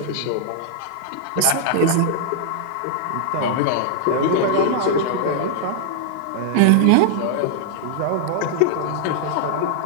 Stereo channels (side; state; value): both; different; correlation -0.01